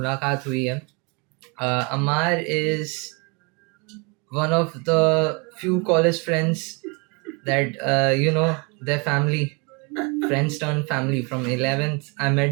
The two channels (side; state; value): left; quieter; 31.1 dB